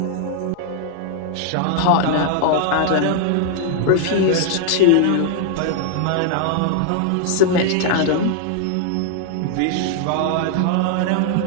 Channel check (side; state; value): both; different; correlation 0.00